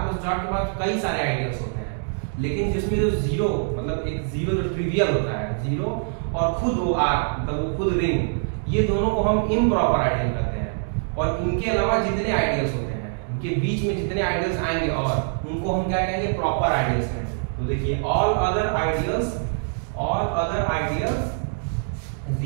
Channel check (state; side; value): silent; left; digital silence